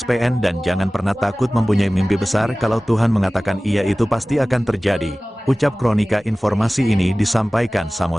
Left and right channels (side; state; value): both; normal; correlation 0.98